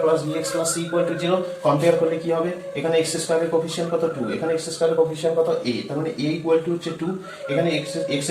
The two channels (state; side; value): identical; both; correlation 1.00